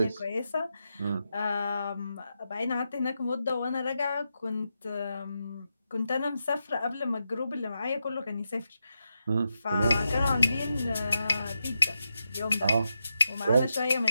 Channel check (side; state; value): both; inverted; correlation -0.87